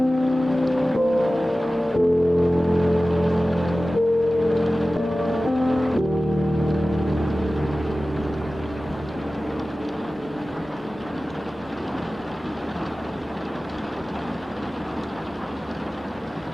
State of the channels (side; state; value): both; normal; correlation 0.96